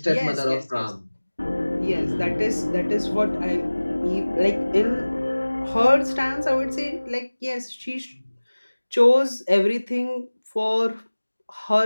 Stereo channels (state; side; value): inverted; both; correlation -1.00